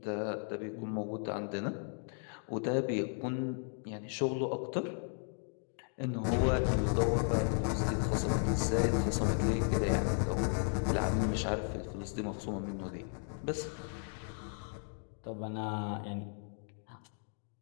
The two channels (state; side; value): silent; right; 54 dB below the other